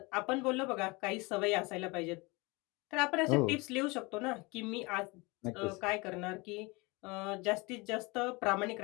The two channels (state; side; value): quieter; right; 25.7 dB